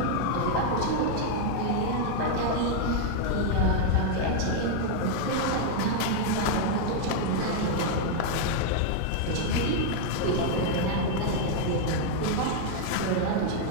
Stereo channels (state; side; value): different; both; correlation 0.00